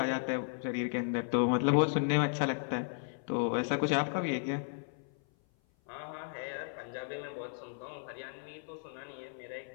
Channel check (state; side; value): silent; right; 55 dB below the other